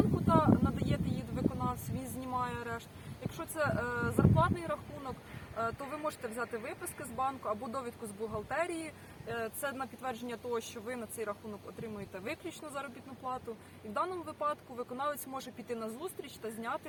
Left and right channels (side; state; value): both; identical; correlation 1.00